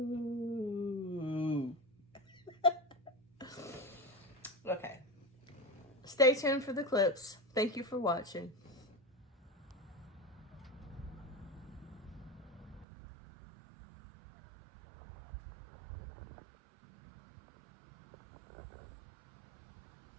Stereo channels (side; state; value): left; drops out; at 12.9 s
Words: Okay. Stay tuned for the clips. Thank you for watching.